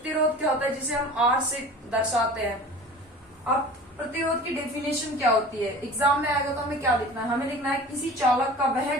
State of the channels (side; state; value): both; normal; correlation 0.40